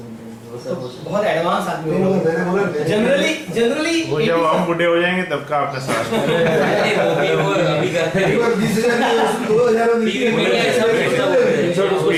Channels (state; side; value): identical; both; correlation 1.00